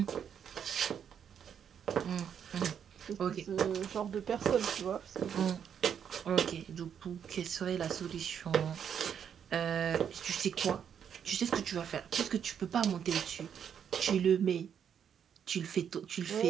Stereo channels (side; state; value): left; quieter; 8.2 dB